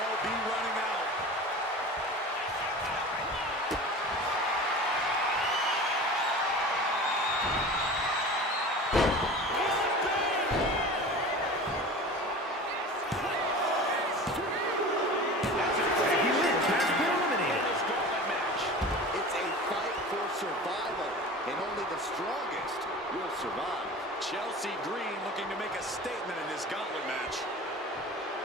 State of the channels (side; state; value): both; normal; correlation 0.36